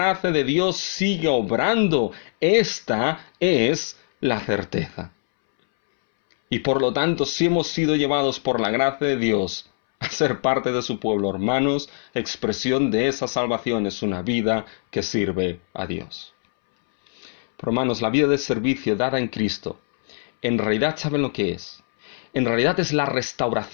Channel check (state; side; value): silent; right; 64 dB below the other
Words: de Dios sigue obrando. Esta es la certeza. Y por lo tanto, si hemos sido llevados por la gracia de Dios a ser parte de su pueblo, hermanos, expresión de esa salvación es una vida que sirve a Dios. Pero hermanos, la vida de servicio dada en Cristo, en realidad, ¿saben lo que es? En realidad es la